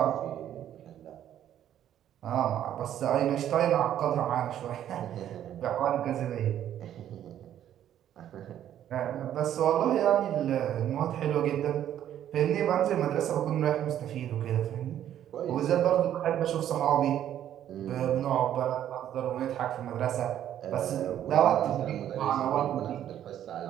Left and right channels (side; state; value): left; quieter; 10.9 dB